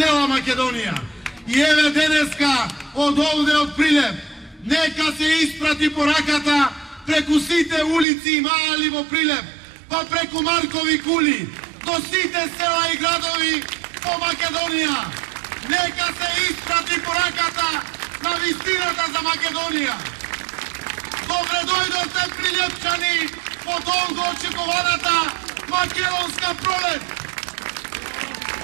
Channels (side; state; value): left; drops out; at 8.1 s